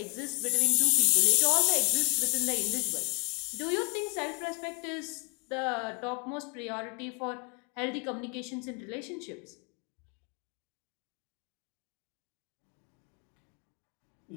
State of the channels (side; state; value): right; quieter; 35.6 dB